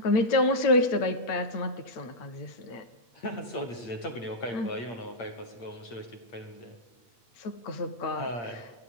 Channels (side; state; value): right; late; 8.9 ms